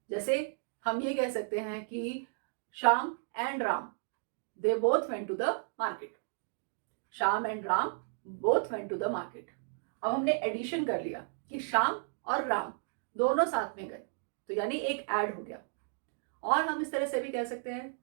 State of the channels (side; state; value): left; silent; digital silence